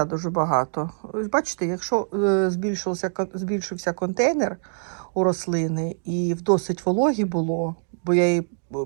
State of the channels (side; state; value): left; silent; digital silence